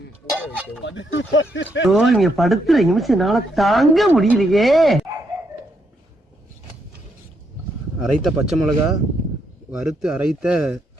ஊற வைக்கவும். நீங்க படுத்துற நிமிஷம்னால தாங்க முடியலையே. அரைத்த பச்சை மிளகா, வறுத்து அரைத்த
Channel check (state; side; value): normal; both; correlation 0.77